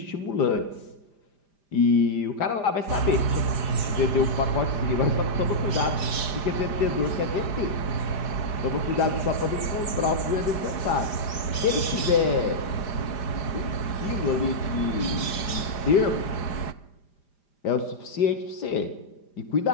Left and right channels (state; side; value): late; right; 4.7 ms